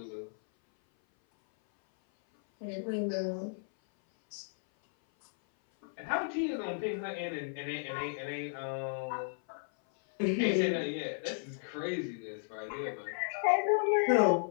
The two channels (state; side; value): silent; right; 55 dB below the other